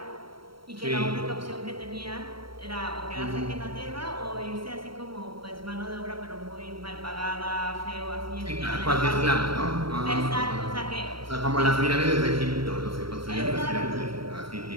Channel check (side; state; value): left; late; 0.74 ms